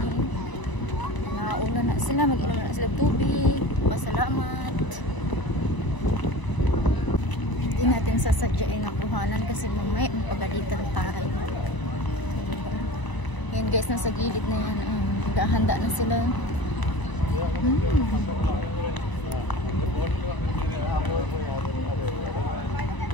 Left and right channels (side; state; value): right; late; 1.0 ms